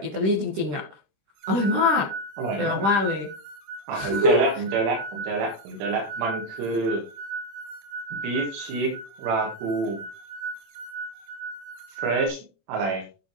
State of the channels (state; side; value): late; left; 21 ms